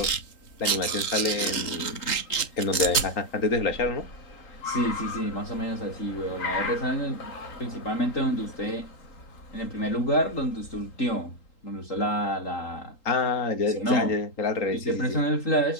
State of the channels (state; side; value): late; right; 3.8 ms